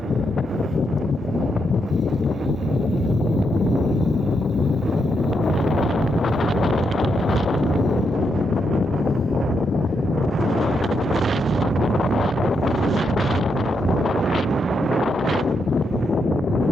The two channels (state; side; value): normal; both; correlation 0.81